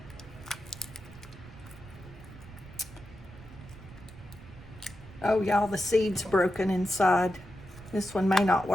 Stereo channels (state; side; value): noise; right; rumble, 18 dB below the sound